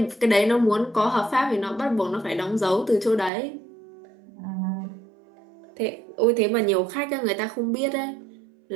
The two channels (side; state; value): left; drops out; at 3.3 s